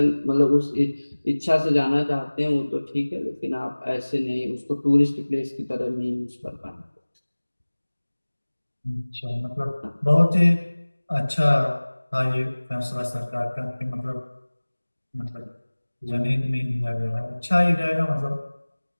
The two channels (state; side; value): inverted; both; correlation -1.00